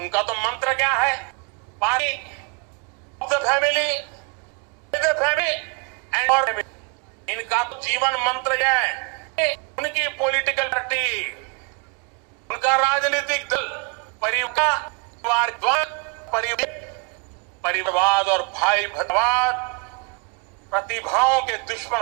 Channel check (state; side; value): quieter; left; 32.0 dB